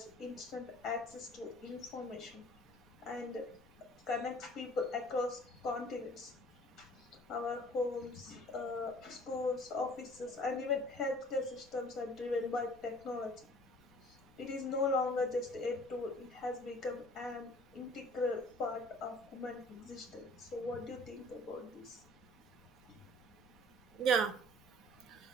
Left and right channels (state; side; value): noise; left; rumble, 26 dB below the sound